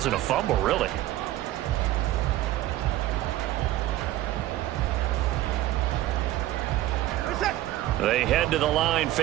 a fumble, really. They head to the line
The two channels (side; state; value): left; quieter; 14.9 dB